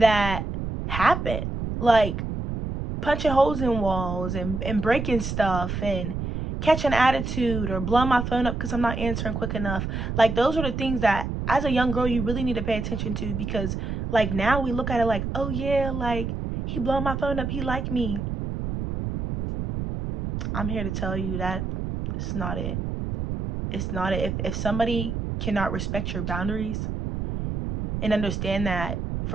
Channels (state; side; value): noise; right; rumble, 4 dB below the sound